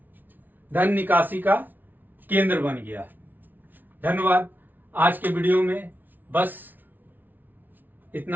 धन निकासी का केंद्र बन गया। धन्यवाद। आज के वीडियो में बस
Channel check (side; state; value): left; late; 0.086 ms